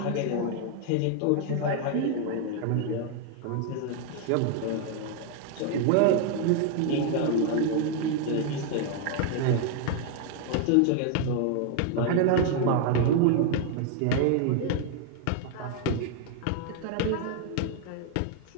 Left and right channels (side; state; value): both; different; correlation 0.00